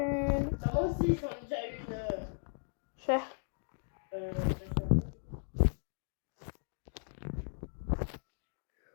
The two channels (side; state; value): right; silent; digital silence